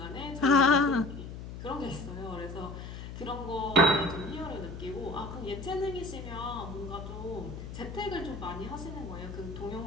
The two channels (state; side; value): noise; left; hum, 10 dB below the sound